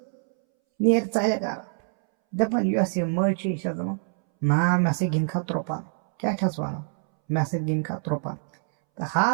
نیر ژَلہِ گرٕ دپان یۄس یہِ مٔج چھِ یہِ چھس دپان نا مےٚ سۭتۍ گِنٛد کھا ترٛوپن کیٛاہ چھس ونان مےٚ سۭتۍ گِنٛد کھا ترٛوپن تہٕ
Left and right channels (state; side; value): silent; left; 61 dB below the other